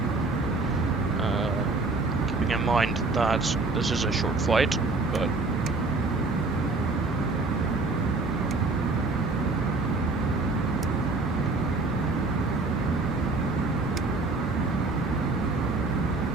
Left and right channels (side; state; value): left; quieter; 3.5 dB